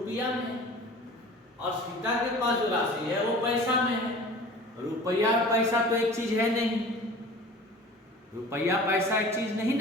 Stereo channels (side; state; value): both; normal; correlation 0.41